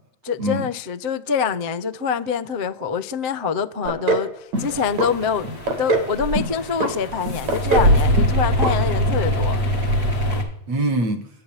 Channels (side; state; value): left; late; 7.8 ms